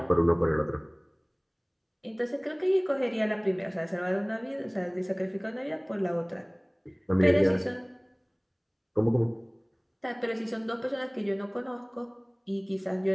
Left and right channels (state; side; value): identical; both; correlation 1.00